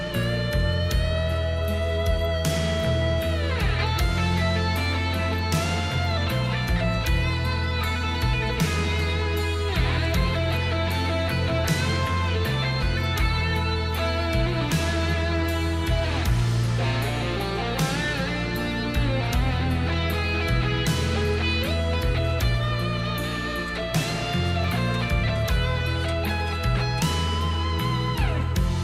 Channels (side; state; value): both; identical; correlation 1.00